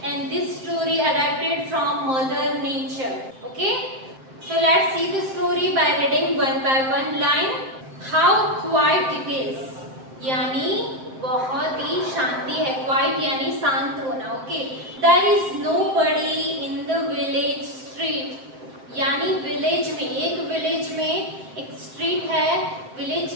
and this story adapted from mother nature. Okay, so let's see the story by reading one by one line. How quiet it is, यानी बहुत ही शांति है. क्वाइट यानी शांत होना. Okay, there is nobody in the village street, यानी village में, एक विलेज में एक स्ट्रीट है, विलेज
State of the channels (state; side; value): late; left; 7.7 ms